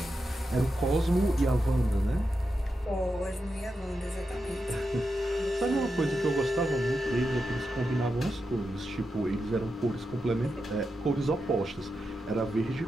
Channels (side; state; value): both; normal; correlation 0.88